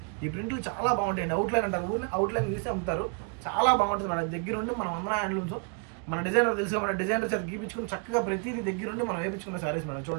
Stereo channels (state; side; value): quieter; left; 36.3 dB